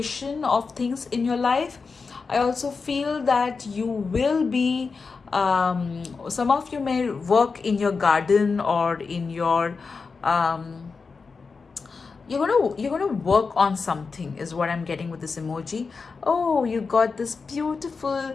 of things in your life. I also feel that you will be some of you may work in your garden or in your you're gonna work on something, is what I'm getting with this emoji. Oh, you got this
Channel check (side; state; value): right; quieter; 4.7 dB